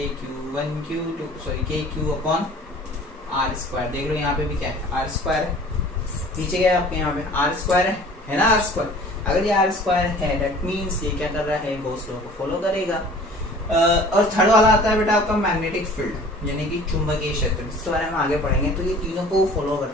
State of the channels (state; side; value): normal; both; correlation 0.47